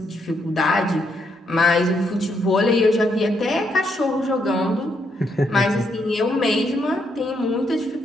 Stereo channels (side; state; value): both; normal; correlation 0.76